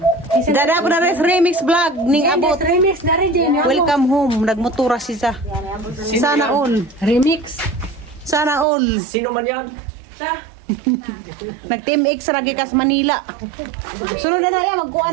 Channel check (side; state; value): left; drops out; at 8.7 s